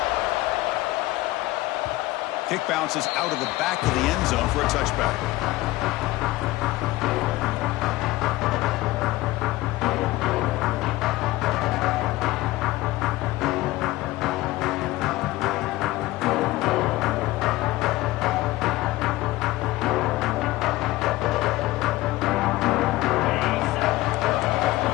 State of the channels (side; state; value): right; quieter; 18.2 dB